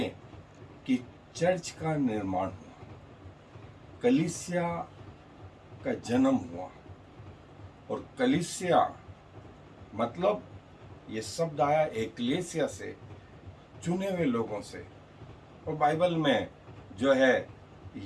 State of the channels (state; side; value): identical; both; correlation 1.00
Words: कि चर्च का निर्माण हुआ, कलीसिया का जन्म हुआ। और कलीसिया मतलब ये शब्द आया एक्लेसिया से, चुने हुए लोगों से। और बाइबल में जो है